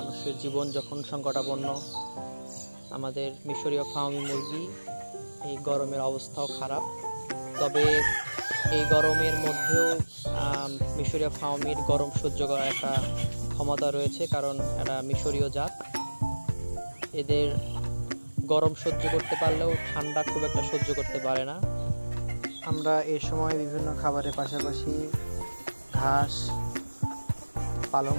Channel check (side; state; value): both; inverted; correlation -1.00